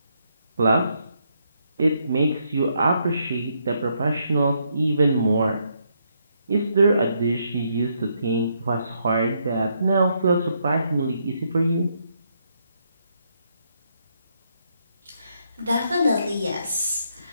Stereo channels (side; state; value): both; inverted; correlation -0.76